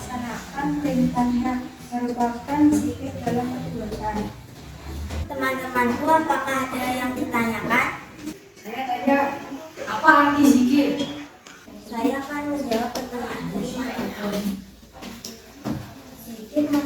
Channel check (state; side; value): identical; both; correlation 1.00